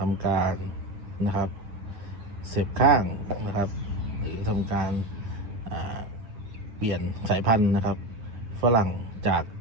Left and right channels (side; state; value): left; late; 9.5 ms